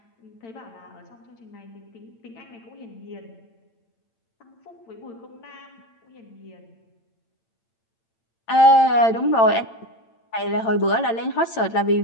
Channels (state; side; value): late; right; 8.9 ms